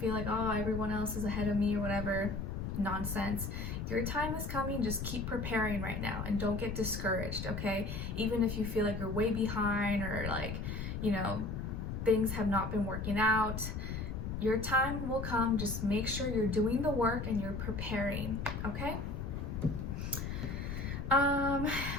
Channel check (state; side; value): noise; left; rumble, 4 dB below the sound